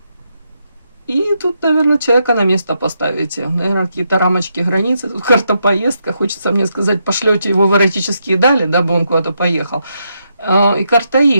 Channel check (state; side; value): inverted; both; correlation -0.81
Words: И тут, наверное, человека на место поставите. Наверное, какие-то рамочки, границы. Тут карта поездка. Хочется мне сказать, пошлете его в эротические дали, дабы он куда-то поехал. И карта